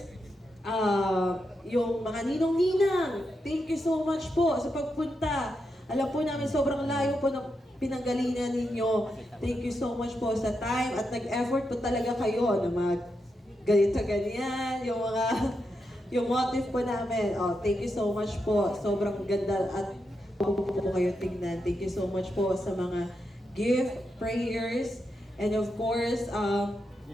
yung mga ninong-ninang. Thank you so much po sa pagpunta. Alam po namin sobrang layo po ng pinanggalingan ninyo. Thank you so much po sa time at nag-effort po talaga kayo na ganito-ganyan, yung motive po namin. Thank you so much po. Sobrang ganda at po kayo tingnan. Thank you so much po sa mga gift, prayers, and of course,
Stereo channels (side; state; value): both; normal; correlation 0.85